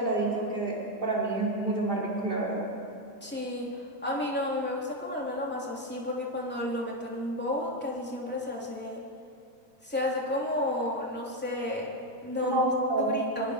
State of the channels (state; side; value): normal; both; correlation 0.06